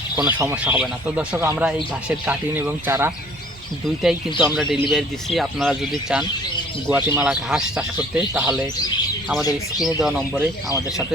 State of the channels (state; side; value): normal; both; correlation 0.55